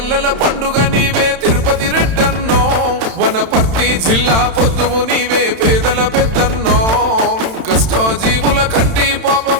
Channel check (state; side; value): late; left; 31 ms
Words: పండుగ నీవే తిరుపతి రెడ్డన్నో, వనపర్తి జిల్లా పొద్దువు నీవే పేదల పెద్దన్నో, కష్టజీవుల కంటి